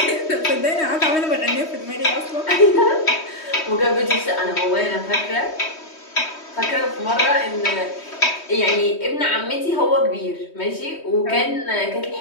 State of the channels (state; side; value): late; right; 3.2 ms